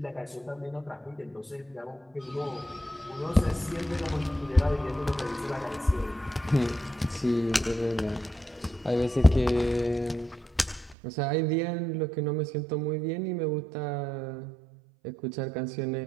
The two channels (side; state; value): left; drops out; at 11.0 s